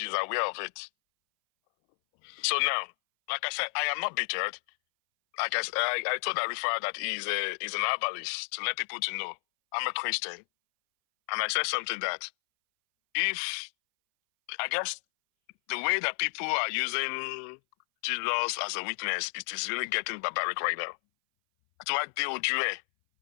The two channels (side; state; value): right; silent; 57 dB below the other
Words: aware of it. So now, like I said, I am not bittered. Like I told Arifa that he's an herbalist to let people to know I'm a Christian. And I said something that if, I guess, the way that people are using Jesus as a witness, it is really getting barbaric right now. That's why